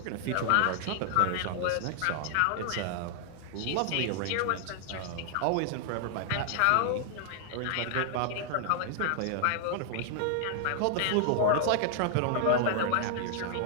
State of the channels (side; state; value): both; different; correlation 0.00